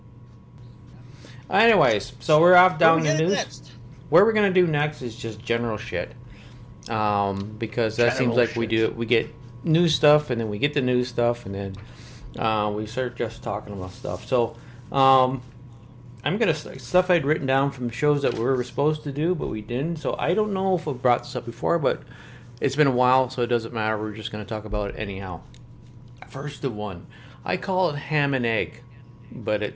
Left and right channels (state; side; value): identical; both; correlation 1.00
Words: Anyways, so we're off down the news. Next? What we're gonna do next is just general shit, because that seems like we get news stuff, and then we get the news stuff, and then we start just talking about stuff. So I'm gonna stuff I'd written down from shows that we were supposed to do, but we didn't. So I don't know if I've brought this up before, but it's been a while, so it doesn't matter. We're just gonna talk about it anyhow. First of one, I call it ham and egg, but